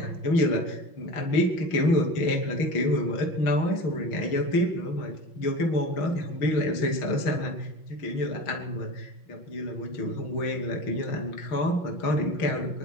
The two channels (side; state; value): right; late; 6.4 ms